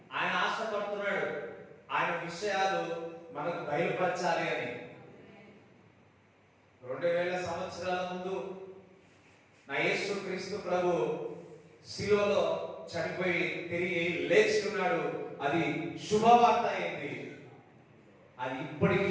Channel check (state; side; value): identical; both; correlation 1.00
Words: ఆయన ఆశపడుతున్నాడు ఆయన విషయాలు మనకు బయలుపరచాలి అని. 2000 సంవత్సరాల ముందు నా యేసు క్రీస్తు ప్రభు శిలువలో చనిపోయి తిరిగి లేచి ఉన్నాడు. అది శుభవార్త అయింది. అది ఇప్పటికీ